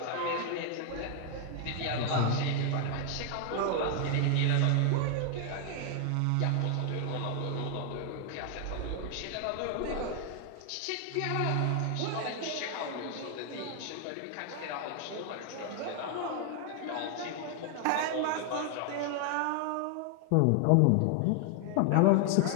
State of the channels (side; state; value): both; different; correlation 0.00